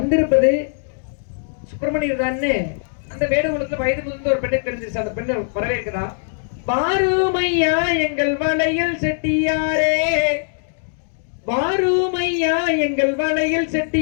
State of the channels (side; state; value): right; silent; digital silence